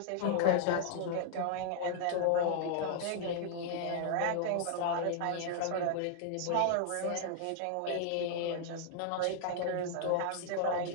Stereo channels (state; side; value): different; both; correlation -0.01